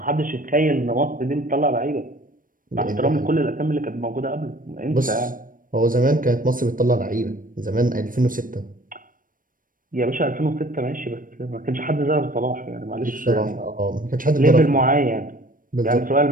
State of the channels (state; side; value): late; left; 0.40 ms